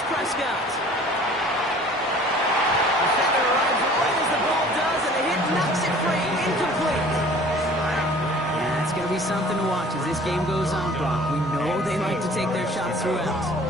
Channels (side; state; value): both; normal; correlation 0.49